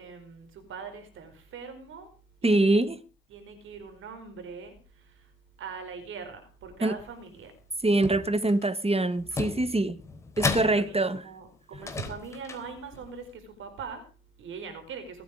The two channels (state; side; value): normal; both; correlation 0.67